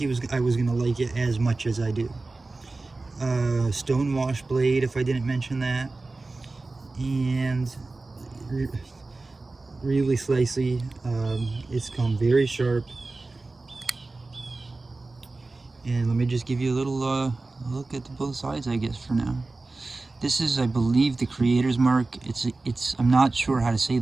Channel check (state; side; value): quieter; left; 3.4 dB